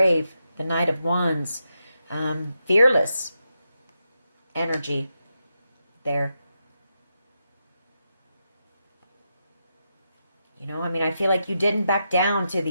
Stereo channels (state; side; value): inverted; both; correlation -0.85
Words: The Knight of Wands. Fearless energy there. You know, I mean, I feel like you didn't back down to